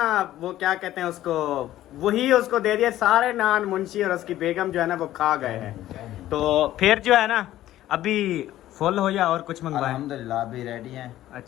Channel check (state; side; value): quieter; right; 13.8 dB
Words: वो क्या कहते हैं उसको, वही उसको दे दिया। सारे नान मुंशी और उसकी बेगम जो है ना वो खा गए हैं। तो फिर जो है ना अभी फुल हो या और कुछ मंगवाए? अल्हम्दुलिल्लाह अभी रेडी हैं।